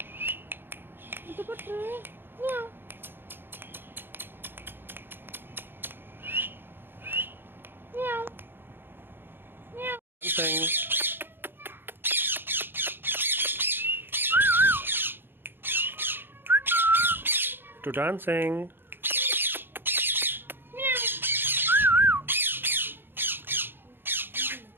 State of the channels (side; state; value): left; late; 0.10 ms